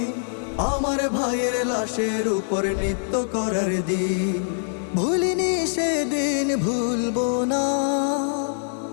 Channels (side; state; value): right; silent; digital silence